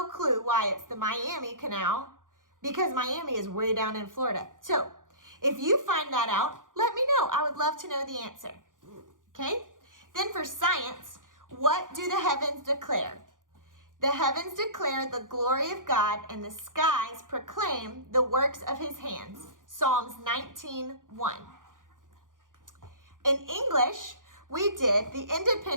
clue why it's the Miami Canal, because Miami is way down in Florida. So if you find that out, let me know. I would love to know the answer. Okay? Then for science, what do the heavens declare? The heavens declare the glory of God, and the skies proclaim the works of his hands. Psalms 19:1. In English, we did the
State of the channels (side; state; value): left; late; 0.89 ms